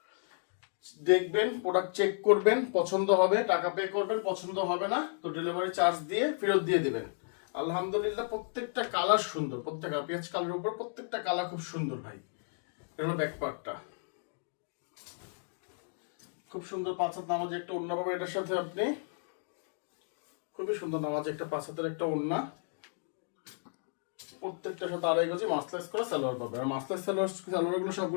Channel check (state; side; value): silent; right; digital silence